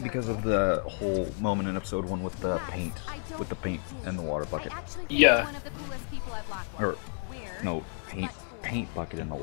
because of the whole moment in episode 1 with the paint, and the water bucket. I actually think Yeah. you're one of the coolest people at Blackwell. Or Weird. no, paint bucket in the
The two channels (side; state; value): right; silent; 57 dB below the other